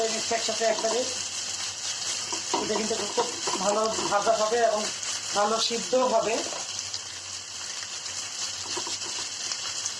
নিচ্ছি একসাথে একবারে। এটা কিন্তু খুব ভালো ভাজা হবে এবং ভালো সিদ্ধ হবে।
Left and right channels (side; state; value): both; identical; correlation 1.00